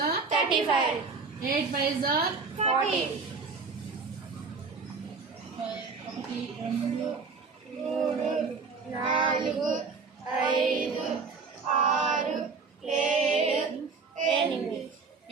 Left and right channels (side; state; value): left; quieter; 4.7 dB